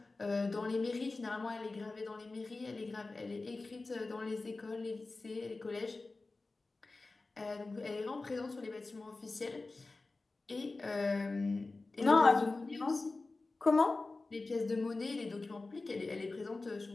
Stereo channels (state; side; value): quieter; right; 3.5 dB